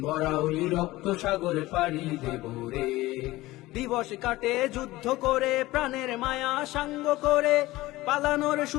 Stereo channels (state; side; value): quieter; right; 18.4 dB